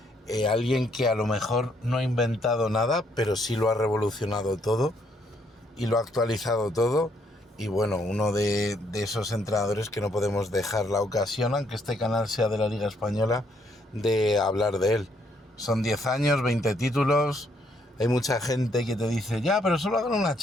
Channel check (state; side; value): normal; both; correlation 0.71